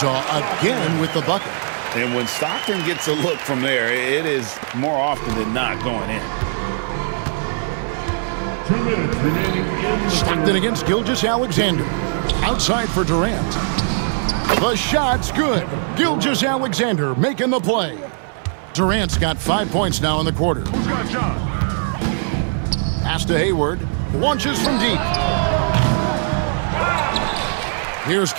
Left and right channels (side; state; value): left; silent; 57 dB below the other